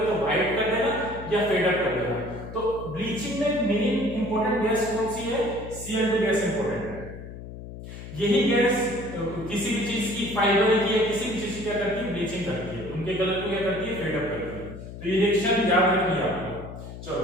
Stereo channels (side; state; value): left; noise; hum, 12 dB below the sound